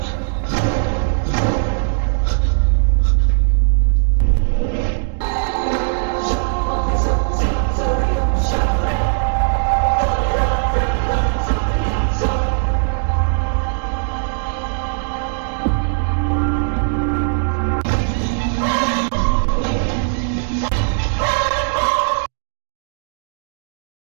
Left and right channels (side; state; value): left; silent; digital silence